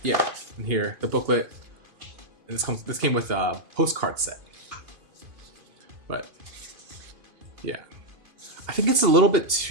yeah, in here the booklet. And this came with a postcard set. But yeah, I think it's a little bit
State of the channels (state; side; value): late; left; 2.8 ms